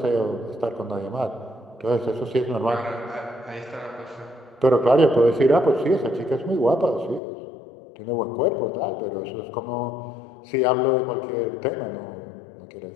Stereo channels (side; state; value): right; drops out; at 7.2 s